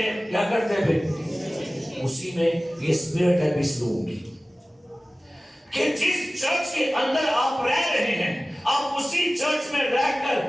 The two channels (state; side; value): normal; both; correlation 0.97